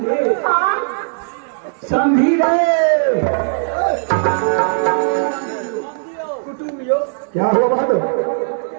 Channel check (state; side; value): silent; left; 68 dB below the other